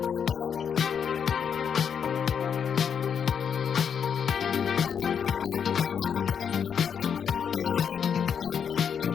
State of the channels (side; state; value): right; quieter; 7.4 dB